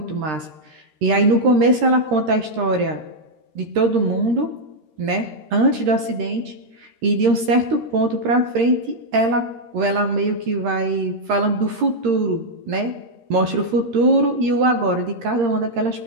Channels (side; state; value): left; late; 13 ms